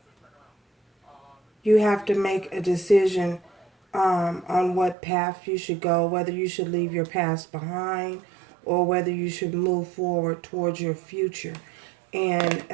You have to make a decision on what path you should go, whether you should leave your past behind or whether you should move forward towards your future. And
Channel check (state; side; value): drops out; left; at 5.0 s